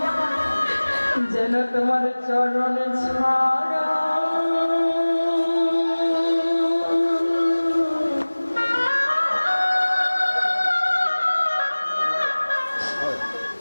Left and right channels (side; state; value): both; inverted; correlation -1.00